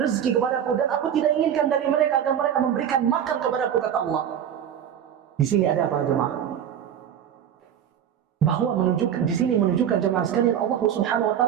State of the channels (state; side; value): quieter; left; 9.3 dB